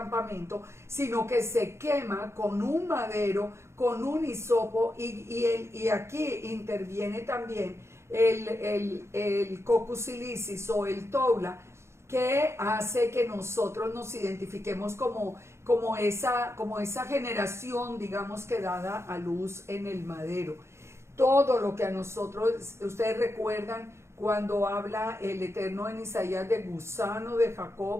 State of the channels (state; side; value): late; left; 0.13 ms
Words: sino que se quema con un madero, con un hisopo, y aquí interviene también el Coccus ilicis o el toula, que hace que nosotros nos identifiquemos como esa generación, digamos, que dada a luz en el madero. Todo lo que a nosotros, ustedes recuerdan cuando habla el Eterno en Isaías de gusano de